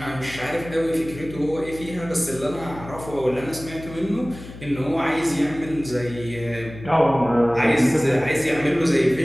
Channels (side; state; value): left; noise; hum, 15 dB below the sound